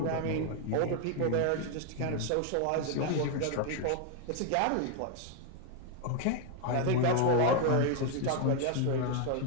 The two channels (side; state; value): both; different; correlation 0.01